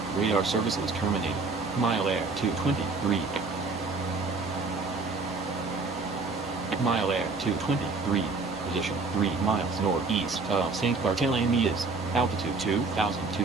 Radar services terminated. Mile air 223. Mile air 223. Position 3 miles northeast of St. Bartholomew's. Altitude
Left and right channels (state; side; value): quieter; left; 3.9 dB